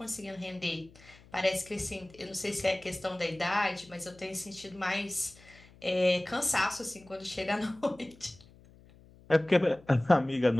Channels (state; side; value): noise; left; hum, 24 dB below the sound